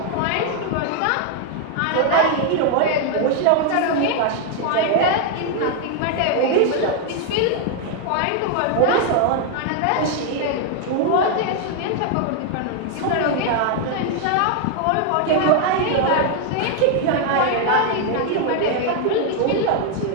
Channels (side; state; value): both; different; correlation 0.00